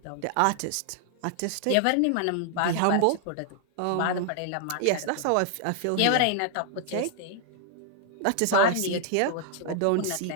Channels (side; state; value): both; different; correlation 0.00